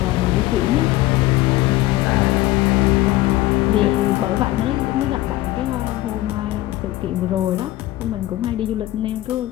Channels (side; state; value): right; quieter; 16.9 dB